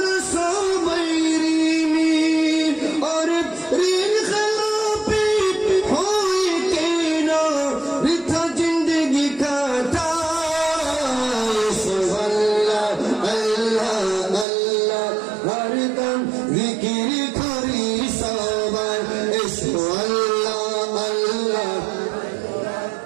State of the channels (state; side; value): drops out; left; at 14.5 s